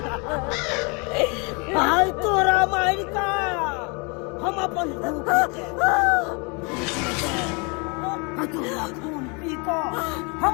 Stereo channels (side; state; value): right; quieter; 32.0 dB